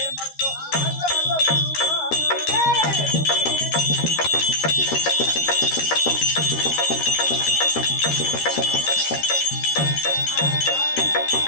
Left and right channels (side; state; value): right; late; 13 ms